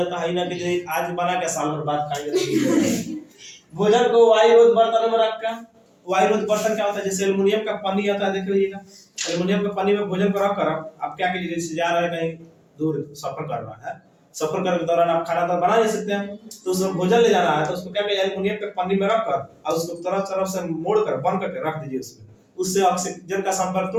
है ना कि जो आज बना के साल भर बाद खाएंगे। भोजन को वायुरोध बर्तन में रखकर, वायुरोध बर्तन क्या होता है, जैसे एल्युमिनियम का पन्नी आता है, देखिएगा एल्युमिनियम के पन्नी में भोजन को रख कर आप क्या कीजिए, जैसे जा रहे हैं कहीं दूर सफर कर रहा है, सफर करने के दौरान आप खाना तो बना नहीं सकते हैं, तो उसमें भोजन ले जाना है तो उसको क्या कीजिए, एल्युमिनियम के पन्नी में रख कर और उसको तरफ तरफ से मोड़ कर बंद करके रख दीजिए उसमें, उससे ऑक्सीजन का संपर्क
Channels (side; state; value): both; identical; correlation 1.00